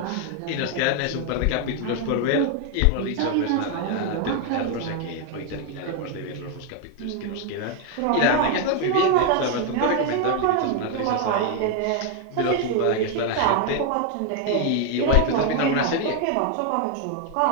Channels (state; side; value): different; both; correlation 0.01